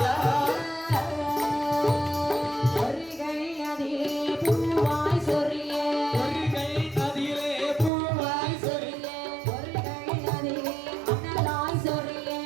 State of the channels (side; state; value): left; drops out; at 7.9 s